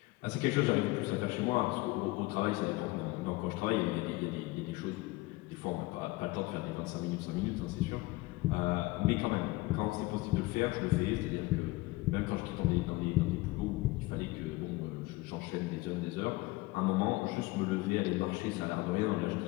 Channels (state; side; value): quieter; right; 20.6 dB